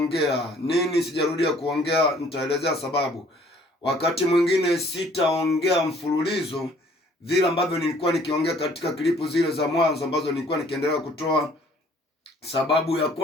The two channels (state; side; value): normal; both; correlation 0.58